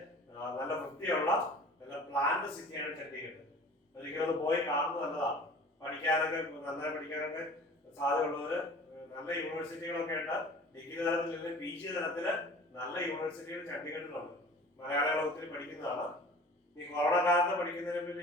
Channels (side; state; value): both; normal; correlation 0.43